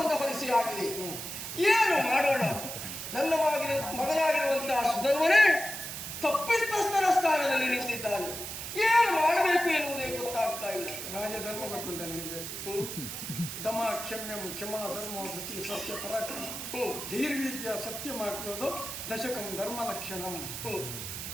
ಹೊರಿಸಿ ಆಗಿದೆ. ಏನು ಮಾಡೋಣ? ನನ್ನ ಮಗನಾಗಿರುವಂತಹ ಸುಧರ್ಮನೇ ತಪ್ಪಿತಸ್ಥರ ಸ್ಥಾನದಲ್ಲಿ ನಿಂತಿದ್ದಾನೆ. ಏನು ಮಾಡಬೇಕು ಎನ್ನುವುದೇ ಗೊತ್ತಾಗ್ತಾ ಇಲ್ಲ. ರಾಜಧರ್ಮ ಗೊತ್ತುಂಟ ನಿನಗೆ? ದಮ ಕ್ಷಮ್ಯಂ ಕ್ಷಮಾ ಧರ್ಮ ವೃತ್ತಿ ಸತ್ಯ ಪರಾಕ್ರಮ ಧೀರ್ವಿದ್ಯ ಸತ್ಯ ಮಾಡುವುದು ದಶಕಂ ಧರ್ಮ ಲಕ್ಷಣಂ.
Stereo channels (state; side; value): noise; right; hiss, 7 dB below the sound